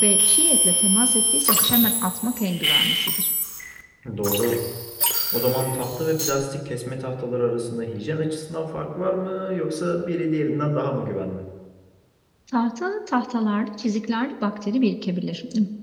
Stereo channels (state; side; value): identical; both; correlation 1.00